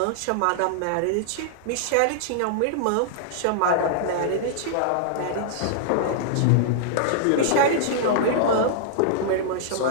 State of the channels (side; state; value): both; different; correlation -0.01